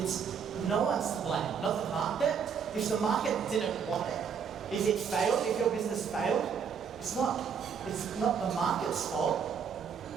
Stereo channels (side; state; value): left; quieter; 6.8 dB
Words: no one's to blame, not the market. If the market didn't want it, if it failed, if your business failed, it's not the market's fault.